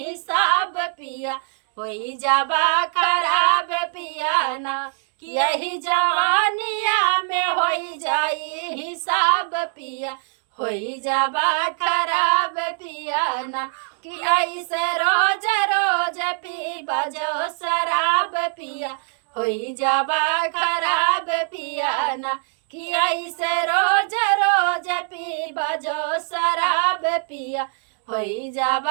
पिया होई जाबा खराब पिया ना, कि यही जवानिया में होई जाई हिसाब पिया होई जाबा खराब पिया ना, कि ऐसे रोज रोज पीबा जो शराब पिया होई जाबा खराब पिया ना, कि ऐसे रोज रोज पीबा जो शराब पिया होई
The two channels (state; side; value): silent; left; digital silence